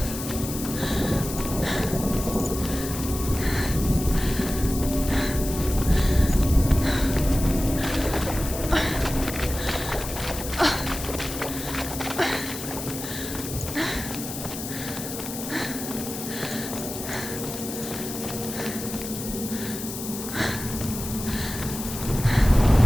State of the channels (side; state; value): left; noise; hiss, 8 dB below the sound